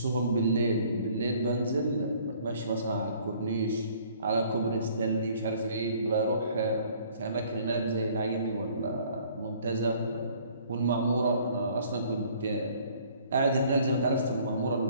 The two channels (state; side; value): inverted; both; correlation -0.57